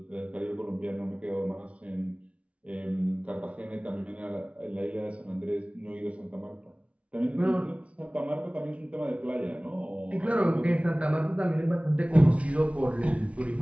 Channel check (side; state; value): left; late; 0.063 ms